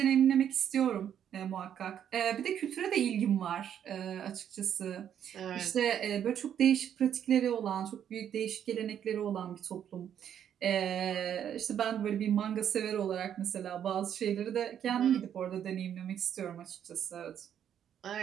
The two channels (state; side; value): quieter; left; 9.4 dB